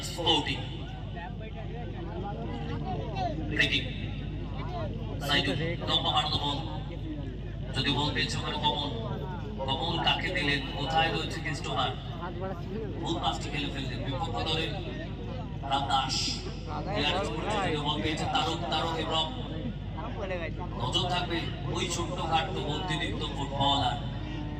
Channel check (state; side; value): identical; both; correlation 1.00